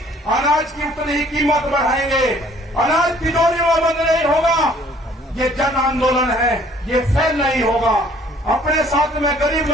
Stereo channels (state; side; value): normal; both; correlation 0.58